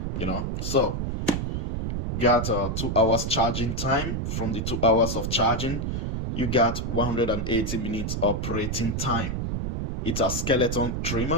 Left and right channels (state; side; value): noise; right; rumble, 2 dB below the sound